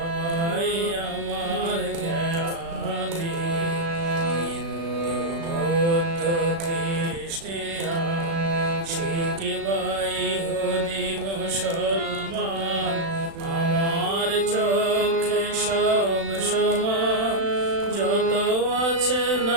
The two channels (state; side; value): late; left; 36 ms